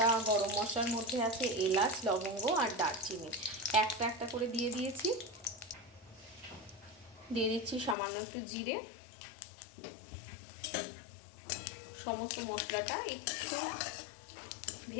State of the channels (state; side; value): drops out; right; at 8.0 s